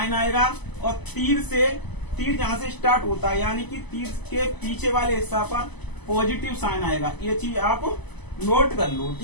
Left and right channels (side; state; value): right; late; 0.99 ms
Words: आएगा, और तीर जहां से स्टार्ट होता है यानी कि तीर के पीछे वाले हिस्सा पर पॉजिटिव साइन आएगा। ये चीज आप नोट कर लो,